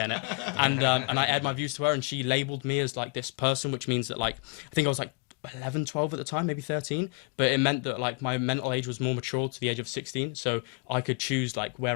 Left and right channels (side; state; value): right; quieter; 33.1 dB